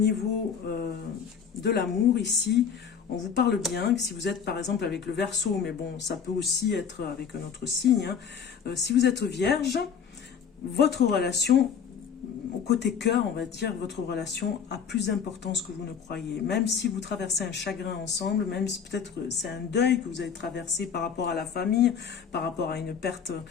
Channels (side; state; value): right; quieter; 7.1 dB